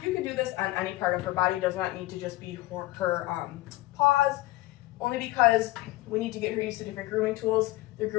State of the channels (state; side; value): quieter; right; 18.5 dB